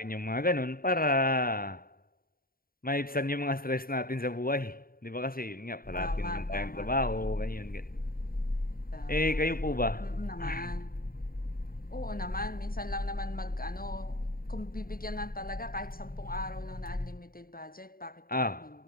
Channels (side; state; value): right; late; 0.43 ms